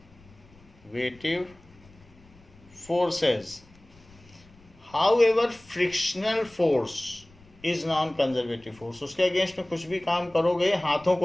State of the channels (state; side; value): noise; left; rumble, 26 dB below the sound